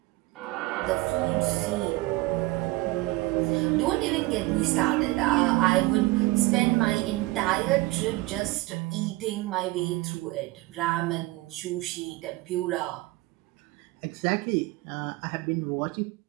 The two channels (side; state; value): left; quieter; 20.2 dB